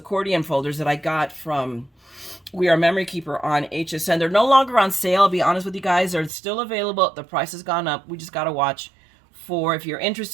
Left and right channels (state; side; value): drops out; left; at 6.3 s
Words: folders that I got from We Are Memory Keeper on HSN. They're no longer on sale, I'll be honest with you guys. They're still available. The price has gone up. We just got to watch. If you're